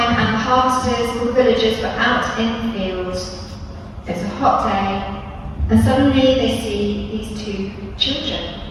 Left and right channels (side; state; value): both; identical; correlation 1.00